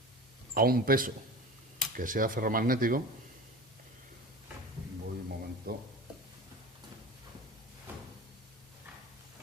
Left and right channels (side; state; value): both; normal; correlation 0.34